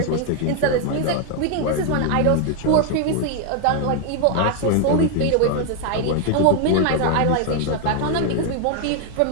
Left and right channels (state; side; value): different; both; correlation 0.00